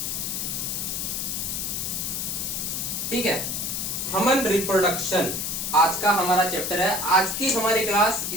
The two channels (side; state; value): left; noise; hiss, 2 dB below the sound